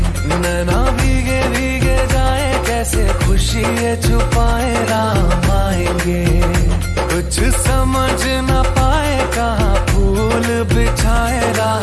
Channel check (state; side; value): identical; both; correlation 1.00